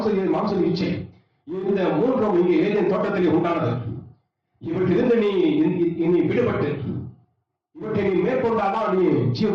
இச்சை, இந்த 3 இங்கே ஏதேன் தோட்டத்திலே உண்டானது. இவற்றிலிருந்து நீ விடுபட்டு இவற்றை நீ மேற்கொண்டாதான் நீ ஜீவ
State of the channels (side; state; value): both; identical; correlation 1.00